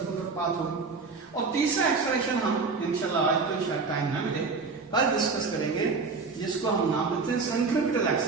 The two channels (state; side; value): quieter; left; 4.5 dB